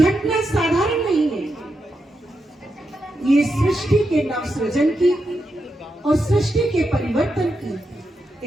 साधारण नहीं है, ये सृष्टि के नवसृजन की और सृष्टि के परिवर्तन की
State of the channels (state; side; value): normal; both; correlation 0.85